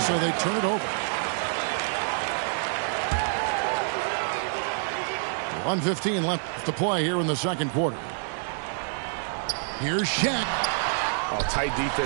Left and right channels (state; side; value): silent; left; digital silence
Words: they turn it over. 1:15 left to play here in the second quarter. Here's Shaq. Oh, tight